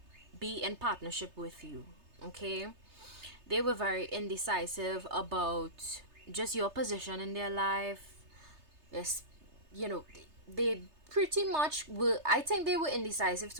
be in partnership with you, okay? They were very indecisive about just your position in their life. Yes, you know, they pretty much were, I think they were indecisive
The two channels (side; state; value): left; late; 3.3 ms